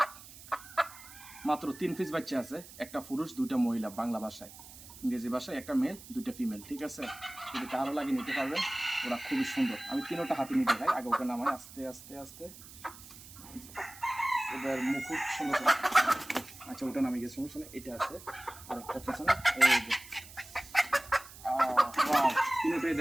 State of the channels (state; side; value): noise; right; hiss, 17 dB below the sound